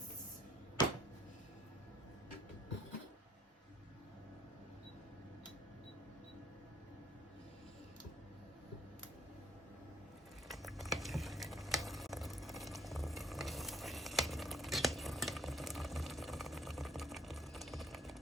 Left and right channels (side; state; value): both; normal; correlation 0.64